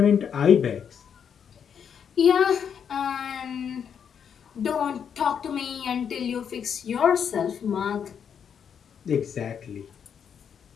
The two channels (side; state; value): right; quieter; 7.7 dB